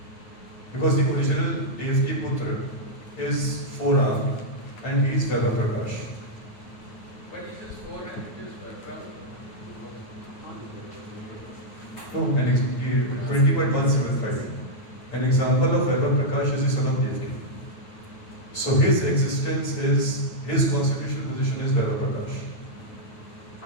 Because the original Devki Putra is forearmed and he is Vaibhav Prakash. But is this 4 and it is Prabhu? No, 20.175. An example of Vaibhav Prakash is the son of Devki. So his existence is, his constitutional position is Vaibhav Prakash.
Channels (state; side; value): late; right; 8.9 ms